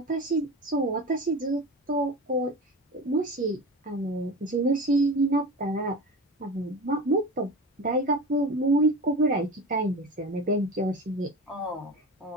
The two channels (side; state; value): both; normal; correlation 0.30